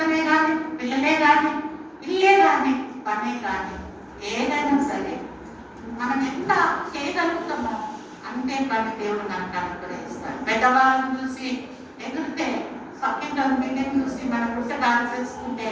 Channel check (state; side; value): identical; both; correlation 1.00